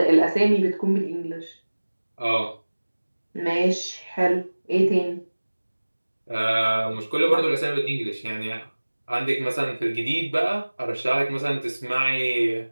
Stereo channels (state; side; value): inverted; both; correlation -1.00